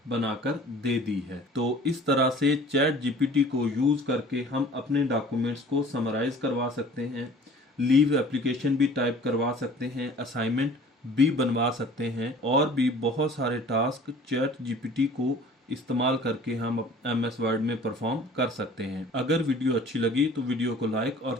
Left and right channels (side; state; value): both; normal; correlation 0.48